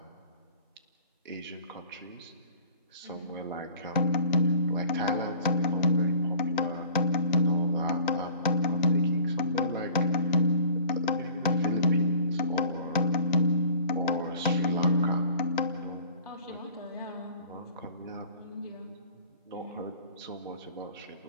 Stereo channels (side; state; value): both; inverted; correlation -0.49